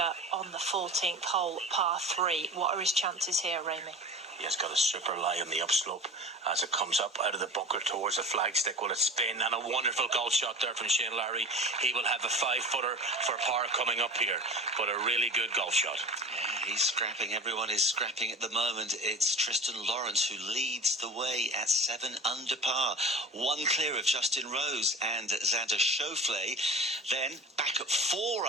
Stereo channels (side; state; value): both; normal; correlation 0.36